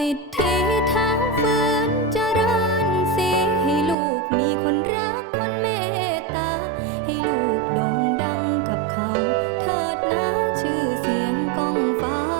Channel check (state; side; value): drops out; left; at 4.0 s